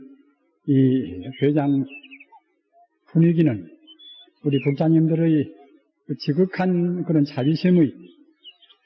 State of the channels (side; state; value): both; identical; correlation 1.00